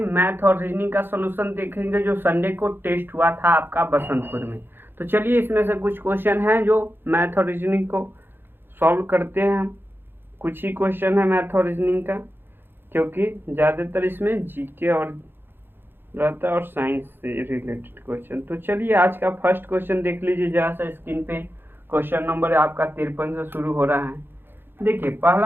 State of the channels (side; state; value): left; late; 0.10 ms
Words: और रीजनिंग का सॉल्यूशन देखेंगे जो संडे को टेस्ट हुआ था आपका बसंतपुर में। तो चलिए, इसमें से कुछ क्वेश्चन हैं जो मैथ और रीजनिंग को सॉल्व करते हैं हम। कुछ ही क्वेश्चन है मैथ और रीजनिंग का, क्योंकि ज़्यादातर इसमें जीके और रहता है और साइंस से रिलेटेड क्वेश्चन। तो चलिए, आज का फर्स्ट क्वेश्चन देख लीजिए जहाँ से स्क्रीन पे। क्वेश्चन नंबर आपका 53 से शुरू हो रहा है। देखिए,